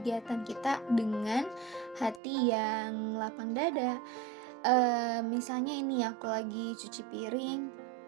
kita dengan hati yang lapang dada. Misalnya ini aku lagi cuci piring,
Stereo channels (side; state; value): left; drops out; at 2.2 s